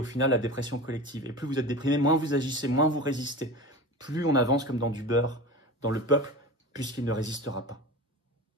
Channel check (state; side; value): normal; both; correlation 0.30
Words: final la dépression collective. Et plus vous êtes déprimé, moins vous agissez, moins vous résistez. Plus on avance comme dans du beurre dans le peuple, puisqu'il ne résistera pas.